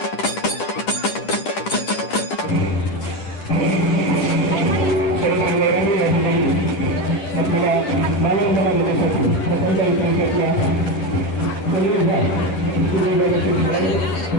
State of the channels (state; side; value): late; right; 10 ms